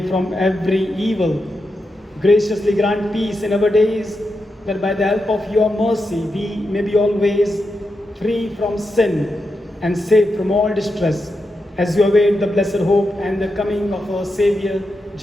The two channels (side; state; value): both; normal; correlation 0.87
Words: from every evil. Graciously grant peace in our days, that by the help of your mercy we may be always free from sin and safe from all distress, as we await the blessed hope and the coming of our Saviour,